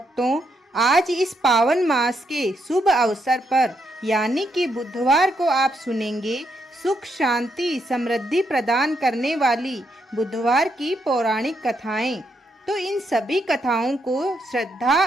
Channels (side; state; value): both; normal; correlation 0.78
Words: आज इस पावन मास के शुभ अवसर पर यानी कि बुधवार को आप सुनेंगे सुख शांति समृद्धि प्रदान करने वाली बुधवार की पौराणिक कथाएं। तो इन सभी कथाओं को श्रद्धा